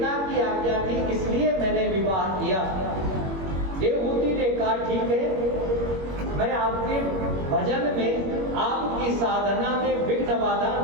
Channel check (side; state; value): left; late; 21 ms